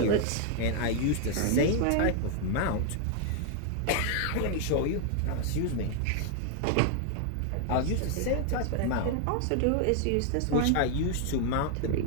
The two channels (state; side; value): different; both; correlation 0.00